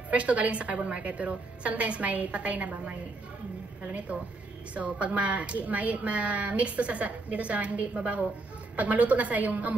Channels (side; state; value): left; quieter; 3.3 dB